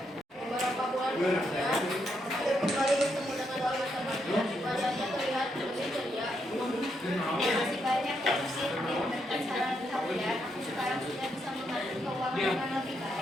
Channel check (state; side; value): normal; both; correlation 0.79